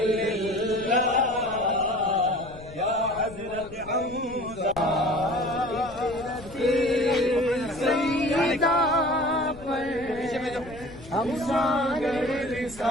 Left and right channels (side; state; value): left; noise; rumble, 18 dB below the sound